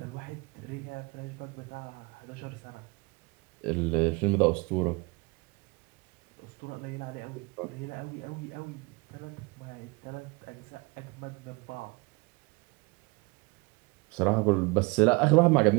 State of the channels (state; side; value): quieter; left; 27.0 dB